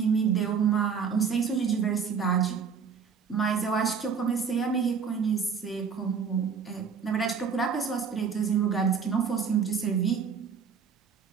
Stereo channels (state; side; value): quieter; left; 6.3 dB